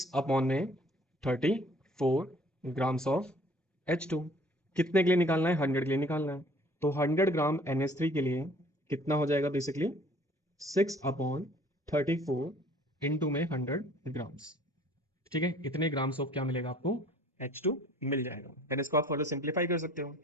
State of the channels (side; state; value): both; normal; correlation 0.54